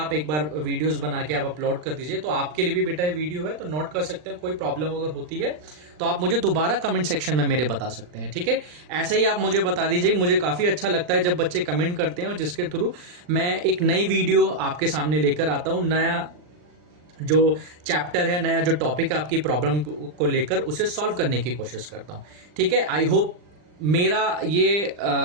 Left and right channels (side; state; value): left; late; 39 ms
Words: एक बार वीडियोस बना के आप अपलोड कर दीजिए, तो आपके लिए भी बेटा ये वीडियो है, तो नोट कर सकते हैं। कोई प्रॉब्लम अगर होती है तो आप मुझे दोबारा कमेंट सेक्शन में मेरे बता सकते हैं। ठीक है, ऐसे ही आप मुझे बता दीजिए, मुझे काफी अच्छा लगता है जब बच्चे कमेंट करते हैं और जिसके थ्रू मैं एक नई वीडियो आपके सामने लेकर आता हूं, नया जो चैप्टर है, नया जो टॉपिक है आपकी प्रॉब्लम को लेकर, उसे सॉल्व करने की कोशिश करता हूं। ठीक है, आई होप मेरा ये